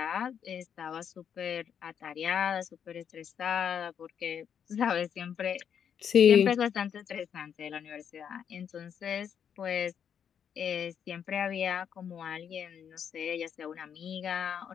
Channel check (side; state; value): right; quieter; 8.1 dB